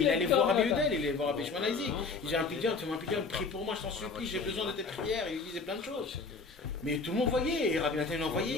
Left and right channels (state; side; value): quieter; right; 4.4 dB